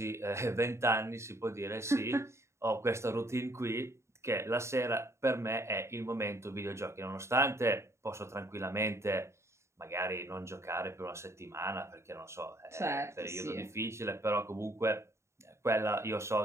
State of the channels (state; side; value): late; left; 0.13 ms